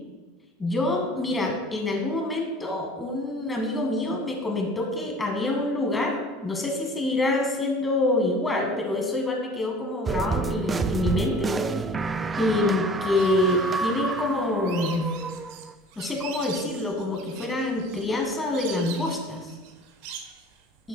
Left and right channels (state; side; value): normal; both; correlation 0.46